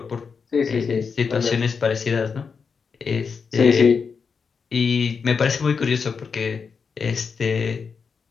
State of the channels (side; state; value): right; quieter; 5.6 dB